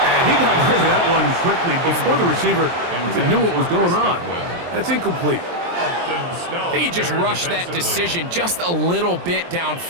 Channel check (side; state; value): left; late; 23 ms